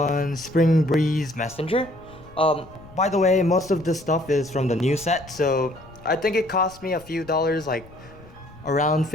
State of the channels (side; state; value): left; noise; rumble, 22 dB below the sound